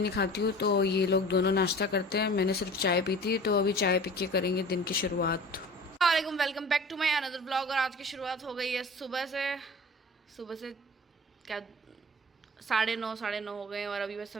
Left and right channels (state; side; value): normal; both; correlation 0.41